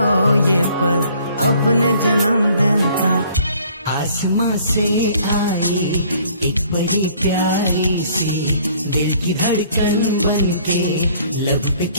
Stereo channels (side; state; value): both; inverted; correlation -0.58